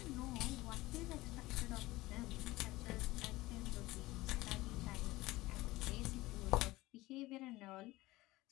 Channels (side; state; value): right; quieter; 19.1 dB